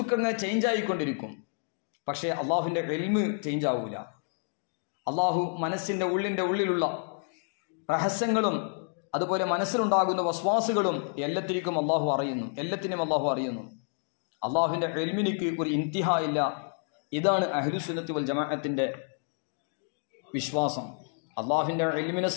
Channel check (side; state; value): right; silent; 58 dB below the other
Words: ഇങ്ങനെ ചേഞ്ച് ആയിക്കൊണ്ടിരിക്കും. പക്ഷേ അള്ളാഹുവിൻ്റെ ഇൽമ് ചേഞ്ച് ആവൂല. അള്ളാഹു മനസ്സിൻ്റെ ഉള്ളിലുള്ള രഹസ്യങ്ങളും അതുപോലെ മനസ്സിലുണ്ടാകുന്ന വസ്വാസുകളും എല്ലാത്തിനും അള്ളാഹു അറിയുന്നു. അള്ളാഹുവിൻ്റെ ഇൽമിനിക്ക് ഒരു ഇന്തിഹ ഇല്ല. ഇതാണ് അഹ്ലുസുന്നത്തി വൽ ജമാഅത്തിൻ്റെ വിശ്വാസം. അള്ളാഹുവിൻ്റെ ഇൽമിനെ